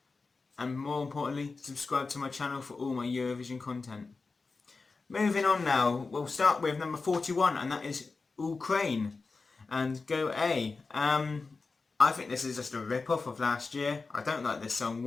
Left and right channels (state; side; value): quieter; right; 4.1 dB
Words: And more importantly, subscribe to my channel for all my Eurovision content. Moving on now, we'll start with number 41 and that is Ukraine. And go A. I think this is just a rip-off of last year. I don't like this song